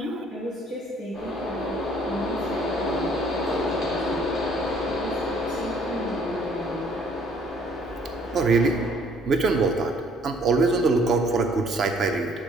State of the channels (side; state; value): both; normal; correlation 0.61